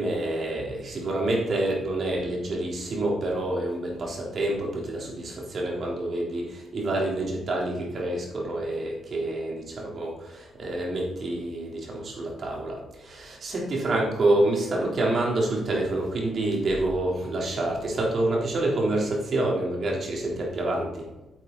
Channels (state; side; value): normal; both; correlation 0.82